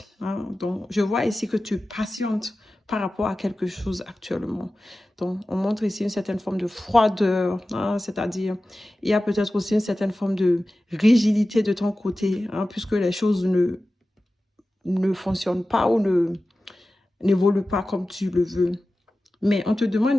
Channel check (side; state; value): both; normal; correlation 0.95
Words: Hein. Donc, je vois ici que tu patientes par rapport à quelque chose actuellement. Donc, on montre ici une certaine forme de froideur, hein, c'est-à-dire, il y a peut-être aussi une certaine forme de rigidité de ton côté, hein, puisque les choses ne fonctionnent pas ou n'évoluent pas comme tu le veux. Mais on te